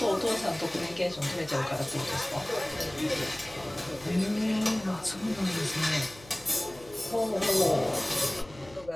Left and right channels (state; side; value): noise; left; hum, 21 dB below the sound